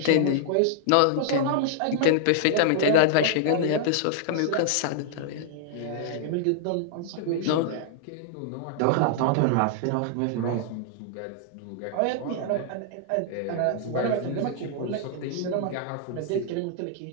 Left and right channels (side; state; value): both; different; correlation -0.01